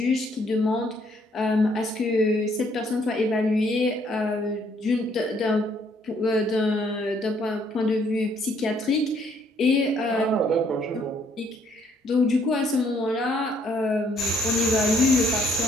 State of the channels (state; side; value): normal; both; correlation 0.67